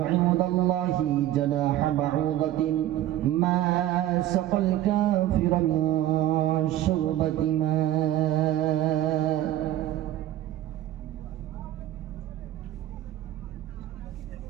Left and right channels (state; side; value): quieter; left; 13.3 dB